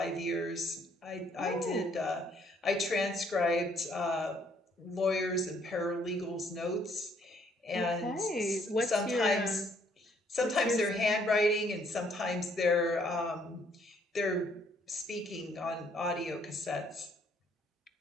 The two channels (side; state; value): both; normal; correlation 0.66